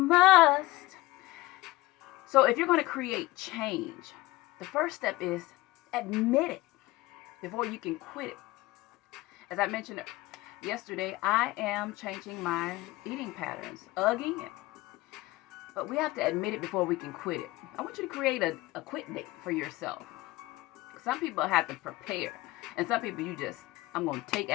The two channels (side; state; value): right; quieter; 19.3 dB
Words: So if you're going to create change, the first step is admit it before you can quit it. As I mentioned yesterday, I am changing my eating patterns again. But we have to admit it before we can quit it. I want you to create a quit date for yourself. Some people have to prepare. And some people I'm going to take